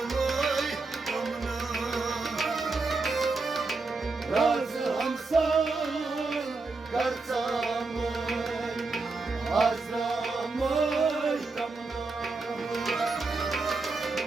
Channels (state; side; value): quieter; left; 3.8 dB